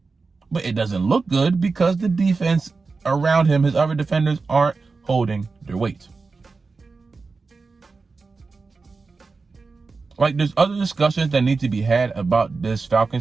But it doesn't look good because the defense around him, his other defenders, aren't holding their weight. Like, there's other discussions that need to be had about this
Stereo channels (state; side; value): quieter; left; 4.2 dB